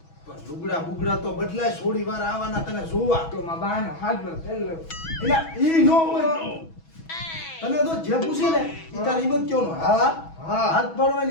પણ લુગડા બુગડા તો બદલાય. છોડી વાર આવવાના તને જોવા તો માં બાનો હાથનો પેલો એટલે ઈ નો હોય. તને તો જે પૂછે ને ઈ તારી હિંમત કયો હા હા. હાથ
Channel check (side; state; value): right; late; 6.1 ms